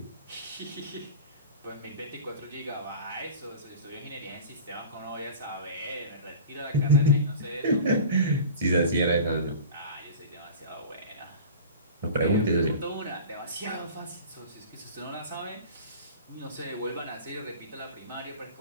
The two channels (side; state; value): both; inverted; correlation -0.38